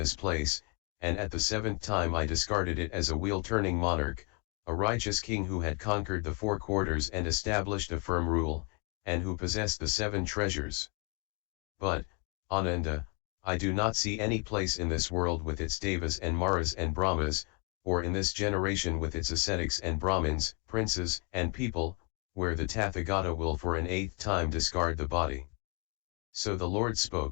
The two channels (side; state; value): right; quieter; 35.7 dB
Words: place, and at the 7th time I discarded it as a wheel-turning monarch, a righteous king who had conquered the 4 quarters and established a firm rule, and who possessed the 7 treasures. But, Ananda, I do not see any place in this world with its devas and maras and brahmas, or in this generation with its ascetics and brahmins, princes and people, where the Tathagata will for an 8th time discard the body. So the Lord